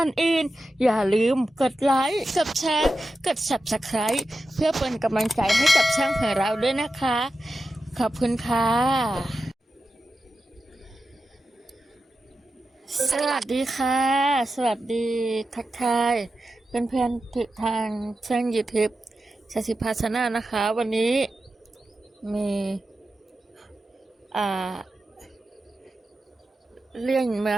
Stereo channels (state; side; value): normal; both; correlation 0.91